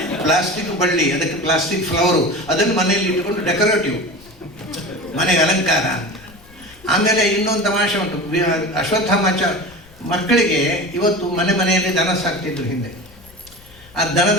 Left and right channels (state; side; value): noise; left; rumble, 24 dB below the sound